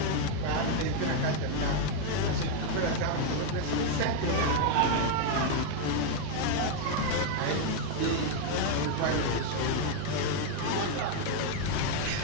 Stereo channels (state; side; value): different; both; correlation 0.00